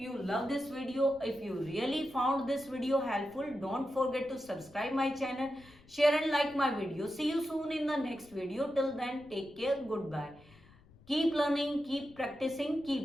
love this video. If you really found this video helpful, don't forget to subscribe my channel, share and like my video. See you soon in the next video. Till then, take care. Goodbye. Keep learning, keep practicing,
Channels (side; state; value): left; noise; rumble, 25 dB below the sound